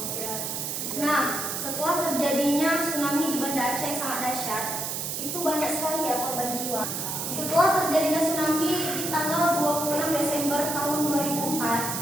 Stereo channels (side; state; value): right; noise; hiss, 3 dB below the sound